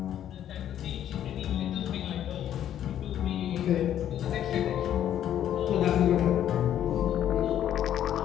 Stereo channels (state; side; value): quieter; right; 10.8 dB